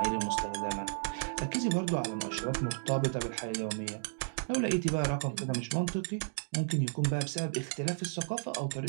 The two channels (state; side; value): silent; left; digital silence